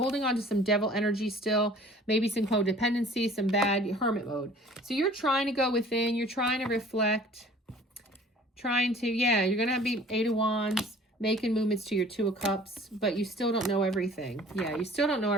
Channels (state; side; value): normal; both; correlation 0.50